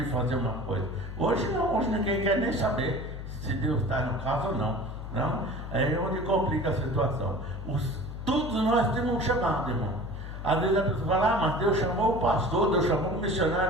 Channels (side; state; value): left; noise; hum, 8 dB below the sound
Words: fazer uma coisa. Hoje não, hoje ninguém quer nem saber se Deus está no caso ou não. Não? É onde complica a situação. Todos nós temos um chamado, irmão. Às vezes a pessoa fala, mas Deus chamou o pastor, Deus chamou o